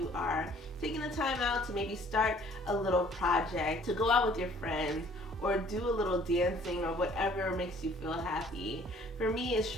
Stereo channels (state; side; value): normal; both; correlation 0.56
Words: are taking the time out to maybe start a little project, to go out with your friends, or do a little dancing, or whatever makes you feel happy. For me, it's